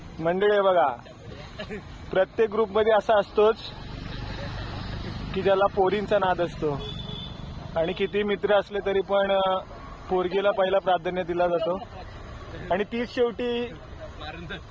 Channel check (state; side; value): identical; both; correlation 1.00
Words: मंडळी बघा, प्रत्येक ग्रुपमध्ये असा असतोच की ज्याला पोरींचा नाद असतो आणि किती मित्र असले तरी पण पोरगीला पहिला प्राधान्य दिला जातो आणि तीच शेवटी